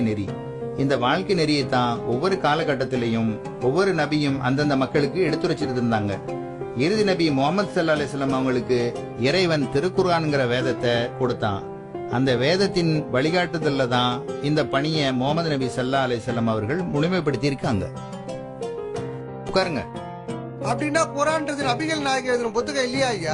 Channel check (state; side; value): identical; both; correlation 1.00